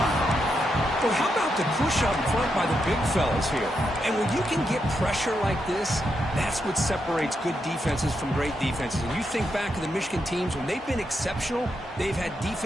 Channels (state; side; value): normal; both; correlation 0.83